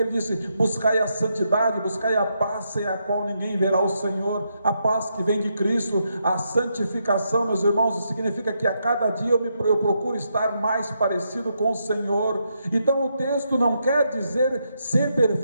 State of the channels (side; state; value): both; inverted; correlation -0.80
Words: disse: buscai a santidade, buscai a paz sem a qual ninguém verá o Senhor. A paz que vem de Cristo, a santificação, meus irmãos, significa que a cada dia eu procuro estar mais parecido com o Senhor. Então o texto não quer dizer ser